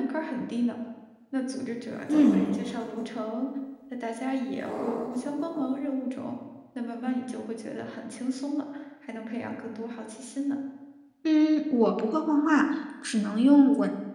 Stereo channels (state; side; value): identical; both; correlation 1.00